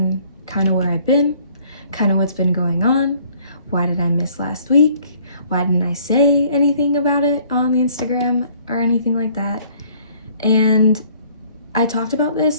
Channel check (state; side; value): inverted; both; correlation -0.59